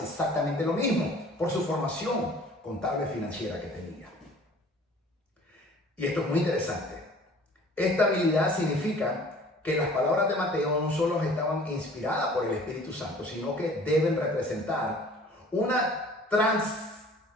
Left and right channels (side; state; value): both; normal; correlation 0.49